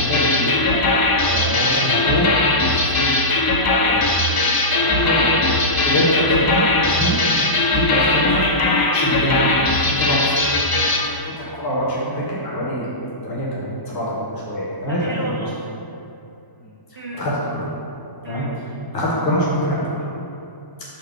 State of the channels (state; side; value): late; right; 1.0 ms